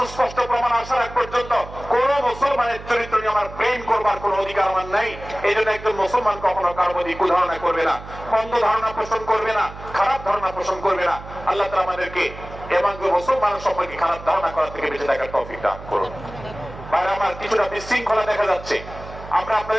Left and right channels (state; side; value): noise; right; hum, 14 dB below the sound